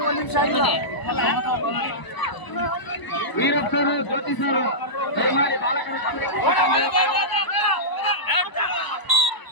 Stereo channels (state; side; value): late; right; 1.0 ms